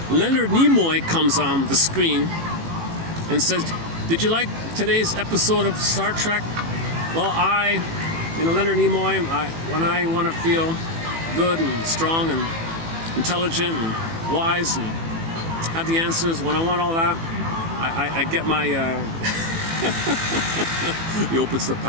Leonard Nimoy comes on the screen and says, "Did you like today's episode of Star Trek?" Well, Leonard Nimoy, when I want to feel good and strong and intelligent and wise and have the answers, when I want all that, I get my... He opens the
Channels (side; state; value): left; late; 18 ms